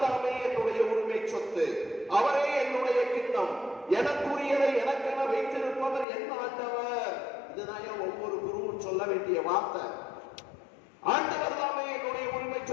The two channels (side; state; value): right; drops out; at 6.1 s